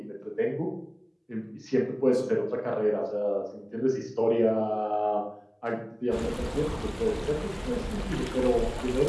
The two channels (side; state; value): both; identical; correlation 1.00